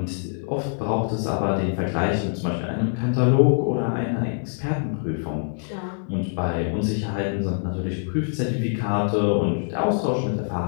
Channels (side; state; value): right; silent; 62 dB below the other